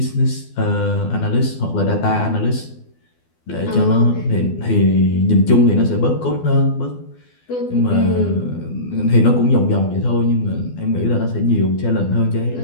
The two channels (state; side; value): late; right; 12 ms